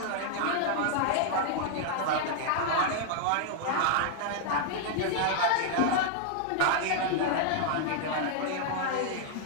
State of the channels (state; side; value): different; both; correlation -0.01